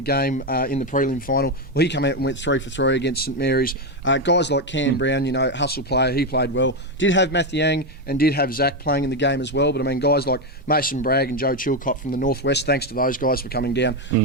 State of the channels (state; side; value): normal; both; correlation 0.08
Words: game in the prelim final. Well, he came out and went 3 for 3 against St. Mary's. Guys like Cam Brown, hustle player, he played well. Did have Matthew Yang and did have Zach playing in the game as well, but I mean, guys like Mason Bragg and Joe Chilcott from the Northwest, thanks to those guys for coming down.